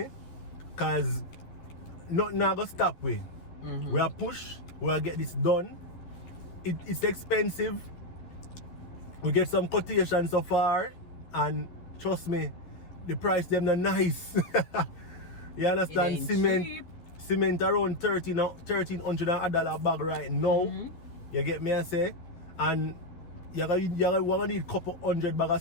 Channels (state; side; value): late; right; 12 ms